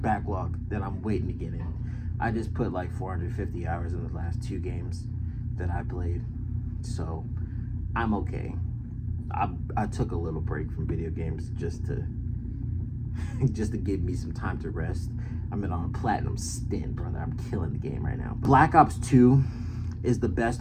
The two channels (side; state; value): both; identical; correlation 1.00